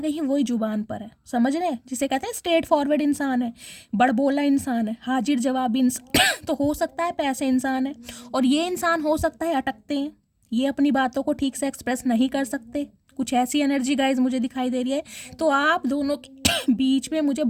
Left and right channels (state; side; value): identical; both; correlation 1.00